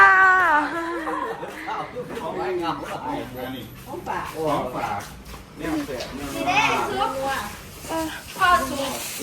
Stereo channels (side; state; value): both; identical; correlation 1.00